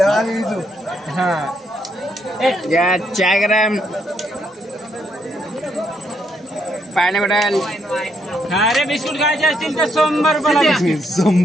चायग्राम पायनॅपल अरे बिस्कुट खायचे असतील तर 100 रुपयाला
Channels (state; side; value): normal; both; correlation 0.75